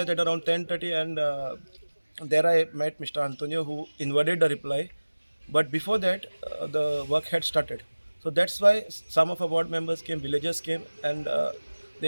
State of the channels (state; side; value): inverted; both; correlation -1.00